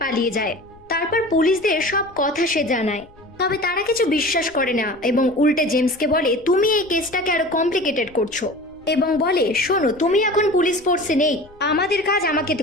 পালিয়ে যায়। তারপর পুলিশদের সব কথা সে জানায়, তবে তারা কিছু বিশ্বাস করে না এবং উল্টে জেমসকে বলে তুমি এই কেসটাকে আরো কমপ্লিকেটেড করছো এবং বলে শোনো তুমি এখন পুলিশ ফোর্সে নেই, আমাদের কাজ আমাকে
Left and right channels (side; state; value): left; noise; rumble, 27 dB below the sound